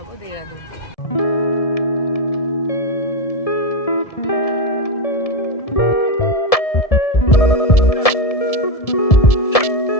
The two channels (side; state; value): right; late; 1.7 ms